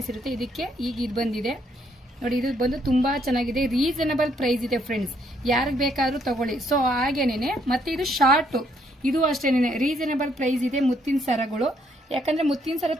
ಇರುತ್ತೆ. ಇದಕ್ಕೆ ಈಗ ಇದು ಬಂದಿದೆ ನೋಡಿ. ಇದು ಬಂದು ತುಂಬಾ ಚೆನ್ನಾಗಿದೆ, ರೀಸನಬಲ್ ಪ್ರೈಸ್ ಇದೆ ಫ್ರೆಂಡ್ಸ್. ಯಾರಿಗೆ ಬೇಕಾದ್ರೂ ತಗೊಳ್ಳಿ. ಸೊ ಹಾಗೇನೆ ಮತ್ತೆ ಇದು ಶಾರ್ಟ್, ಇದು ಅಷ್ಟೇನೆ ರೀಸನಬಲ್ ಪ್ರೈಸ್ ಇದೆ ಮುತ್ತಿನ ಸರಗಳು. ಯಾಕಂದ್ರೆ ಮುತ್ತಿನ ಸರ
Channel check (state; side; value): normal; both; correlation 0.70